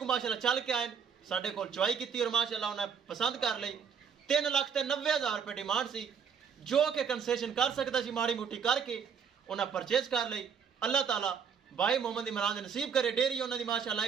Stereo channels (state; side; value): quieter; left; 6.9 dB